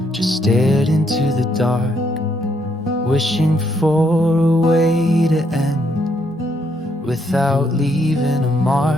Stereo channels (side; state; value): both; normal; correlation 0.73